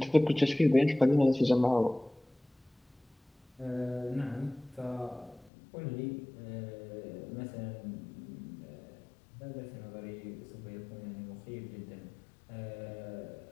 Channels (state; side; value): drops out; right; at 5.5 s